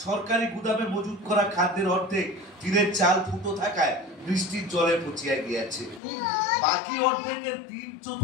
সরকারি গুদামে মজুত করা খাদ্যের অর্ধেক টিনের চাল ফুটো থাকায় বৃষ্টির জলে পচিয়া গিয়াছে। বাকি অর্ধেকের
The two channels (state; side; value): drops out; right; at 6.0 s